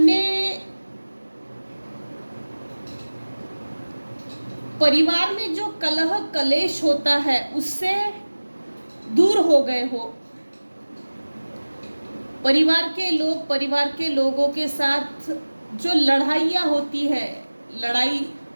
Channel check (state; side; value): inverted; both; correlation -1.00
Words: परिवार में जो कलह कलेश होता है उससे दूर हो गए हो। परिवार के लोगों के साथ जो लड़ाइयाँ होती है, लड़ाई